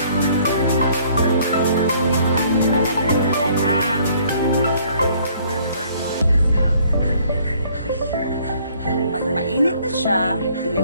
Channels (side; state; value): both; inverted; correlation -0.60